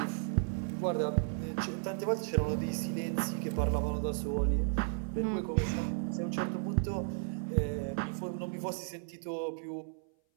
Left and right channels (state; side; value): silent; left; 55 dB below the other